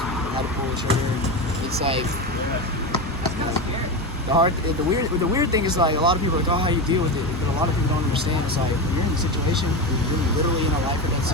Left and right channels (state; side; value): normal; both; correlation 0.19